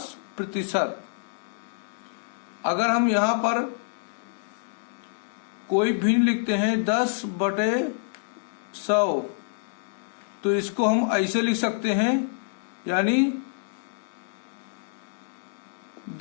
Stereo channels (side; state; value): right; silent; digital silence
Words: अगर हम यहाँ पर कोई भिन्न लिखते हैं 10/100, तो इसको हम ऐसे लिख सकते हैं, यानी